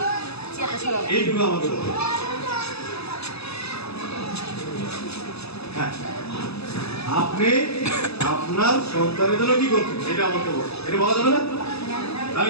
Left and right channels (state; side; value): late; right; 0.79 ms